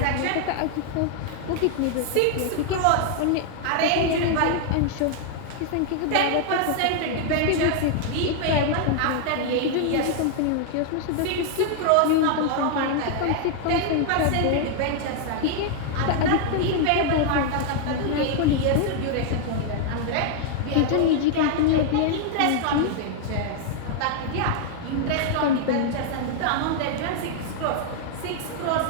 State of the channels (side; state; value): both; different; correlation 0.00